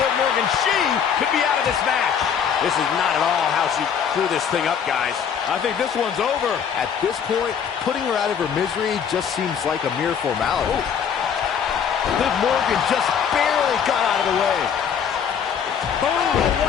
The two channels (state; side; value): quieter; right; 7.6 dB